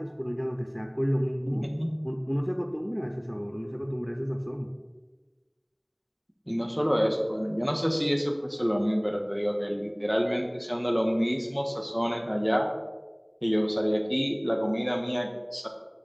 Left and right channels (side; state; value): both; identical; correlation 1.00